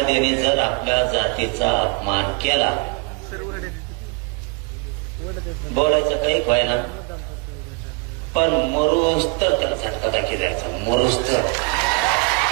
जर आपल्या जातीचा अपमान केला, बोलायचं काही व्हायना, पण मरूस तर त्याला झटका दाखी द्यायचा, मरूस तर.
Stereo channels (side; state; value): left; quieter; 31.5 dB